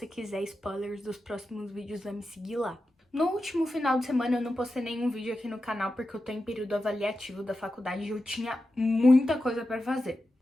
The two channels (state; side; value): normal; both; correlation 0.91